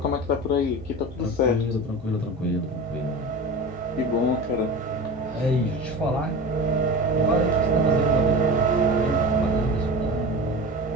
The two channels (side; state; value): both; normal; correlation 0.31